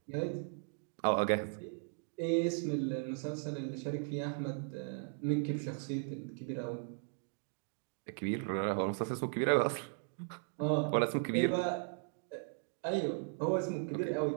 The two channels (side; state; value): left; silent; 53 dB below the other